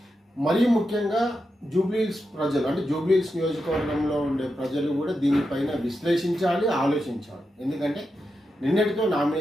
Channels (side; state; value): both; normal; correlation 0.87